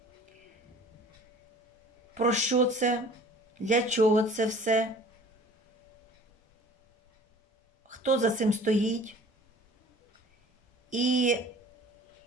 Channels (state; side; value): normal; both; correlation 0.47